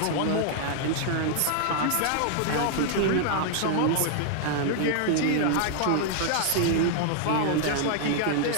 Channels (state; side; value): different; both; correlation -0.01